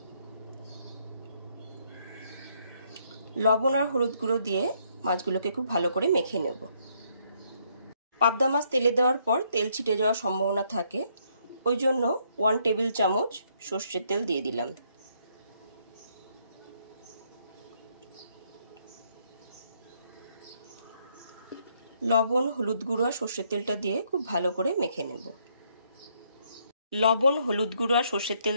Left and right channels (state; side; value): inverted; both; correlation -0.71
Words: লবণ আর হলুদ গুঁড়ো দিয়ে মাছগুলোকে খুব ভালো করে মেখে নেব। পাবদা মাছ তেলে দেওয়ার পর তেল ছিটে যাওয়ার সম্ভাবনা থাকে, ওই জন্য 1 টেবিল চামচ সর্ষের তেল দিয়ে দিলাম। লবণ, হলুদ গুঁড়ো আর সর্ষের তেলটা দিয়ে খুব ভালো করে মেখে নেব। লবণ, হলুদ গুঁড়ো আর সর্ষের তেল